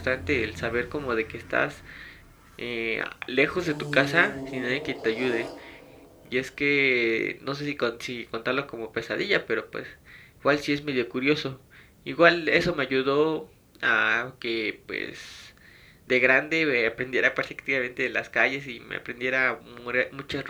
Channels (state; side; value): identical; both; correlation 1.00